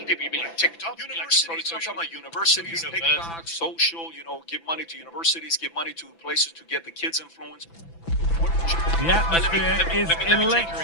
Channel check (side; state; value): right; late; 6.0 ms